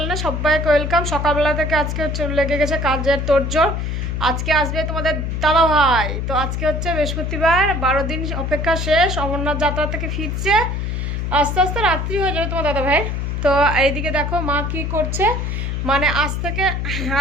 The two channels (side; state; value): left; noise; hum, 2 dB below the sound